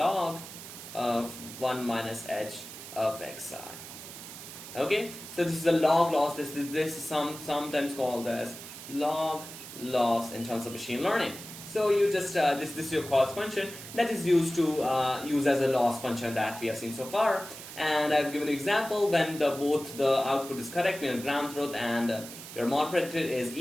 of 1 minus h of xi. Okay, so this is a log loss. This is sometimes called as log loss in terms of machine learning. So you just this is your cost function that is used to use as a loss function that we have seen so far. And I've given an example when both the output is correct, your ground truth and your mod predictor is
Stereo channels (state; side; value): noise; right; hiss, 13 dB below the sound